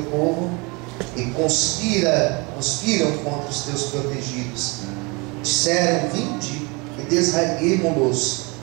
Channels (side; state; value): left; quieter; 28.4 dB